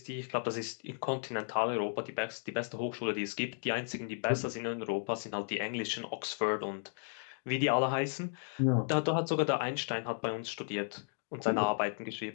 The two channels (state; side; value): silent; right; digital silence